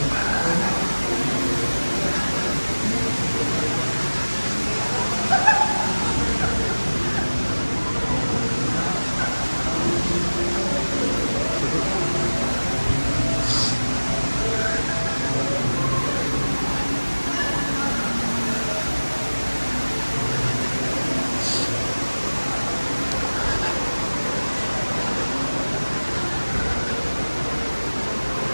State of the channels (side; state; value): both; inverted; correlation -1.00